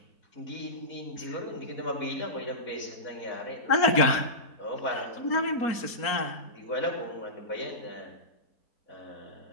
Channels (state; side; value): late; right; 4.3 ms